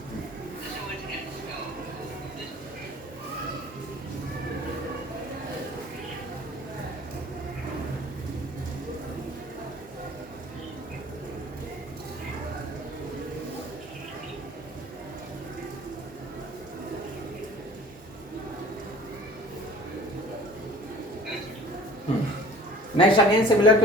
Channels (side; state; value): both; normal; correlation 0.47